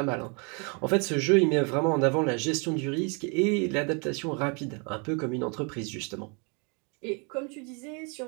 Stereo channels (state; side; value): quieter; left; 34.3 dB